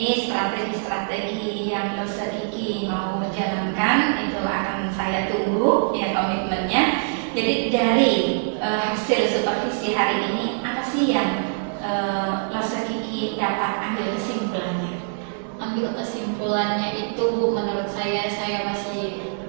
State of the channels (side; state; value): left; silent; 61 dB below the other